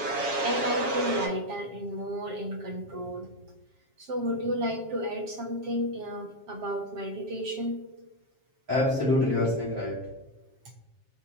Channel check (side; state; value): left; late; 7.3 ms